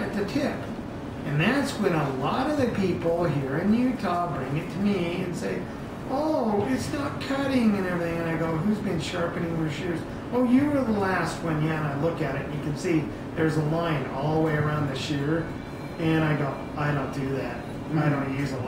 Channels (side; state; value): both; identical; correlation 1.00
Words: at the tip. And that's when a lot of the people here in Utah bring it to me and say, oh, it's not cutting and everything. And I go, who's been sharpening your shears? Oh, you were the last one. Yeah, and I look at it and you can see there's a line all the way around the shear. And I go, I don't do that. I don't use a